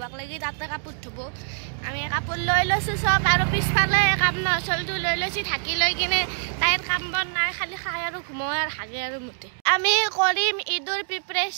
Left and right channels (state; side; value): silent; left; 59 dB below the other